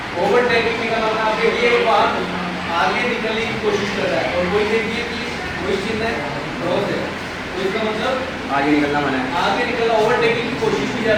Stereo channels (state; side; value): identical; both; correlation 1.00